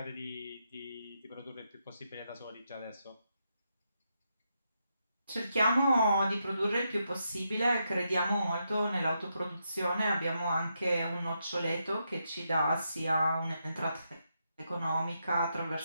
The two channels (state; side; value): inverted; both; correlation -0.82